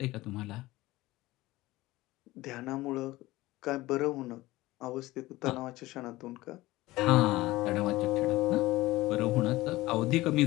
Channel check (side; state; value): right; quieter; 18.5 dB